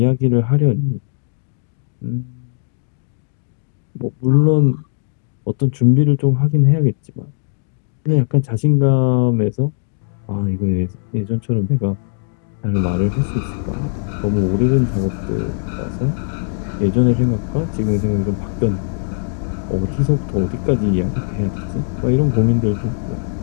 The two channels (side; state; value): right; silent; 61 dB below the other